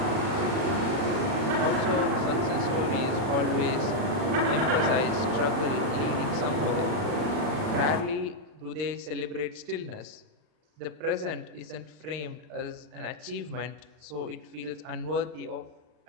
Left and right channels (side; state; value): left; late; 40 ms